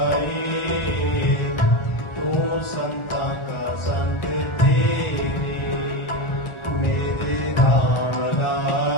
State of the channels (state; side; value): late; right; 1.4 ms